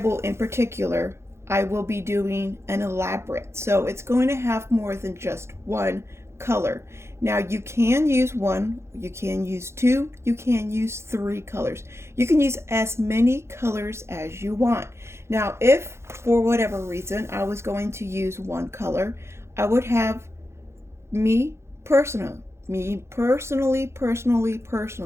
in particular, I will be doing an elaborate. So it's going to have more than just one color. Now you can use one, you can use two, you can use three colors. You can use as many colors as you want. Now, if for whatever reason I was going to use one color, I would have me personally,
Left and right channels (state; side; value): late; left; 0.13 ms